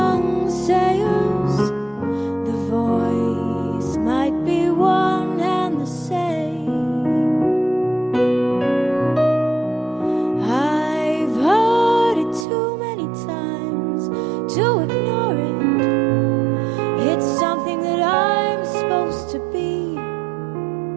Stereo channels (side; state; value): left; drops out; at 12.5 s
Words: sailors? The voice might be one and the same. I've heard it too many times to ignore it. It's something that I'm supposed to be.